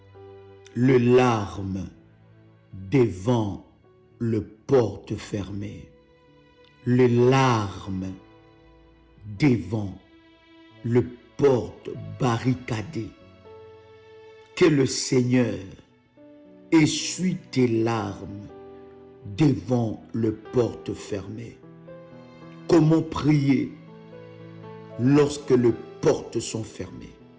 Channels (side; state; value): both; identical; correlation 1.00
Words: Le larme devant le porte fermé. Le larme devant le porte barricadé. Que le Seigneur essuie tes larmes devant le porte fermé. Comment prier lorsque les portes sont fermées?